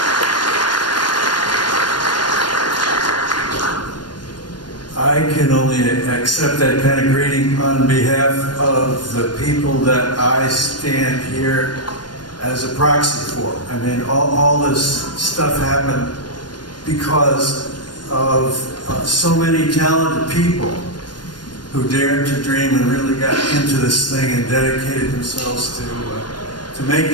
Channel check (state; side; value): late; right; 0.71 ms